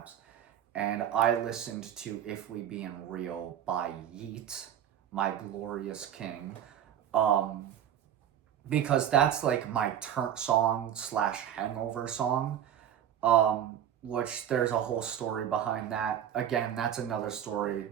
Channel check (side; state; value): left; quieter; 10.1 dB